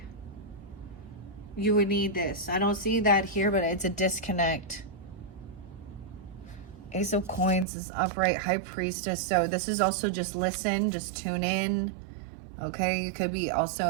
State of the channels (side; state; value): left; drops out; at 7.7 s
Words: you would need this. I don't see that here, but it's a disconnect. Ace of Coins is upright, High Priestess. So this is also just listen, just tune in, okay? You could be